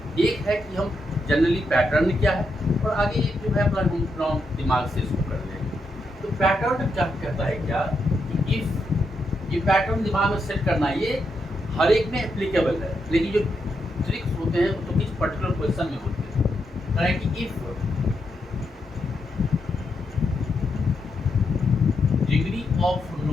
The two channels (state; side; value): normal; both; correlation 0.82